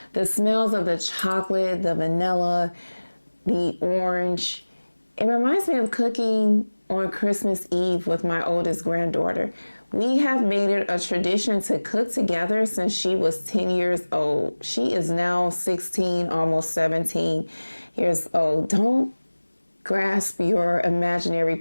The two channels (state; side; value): inverted; both; correlation -1.00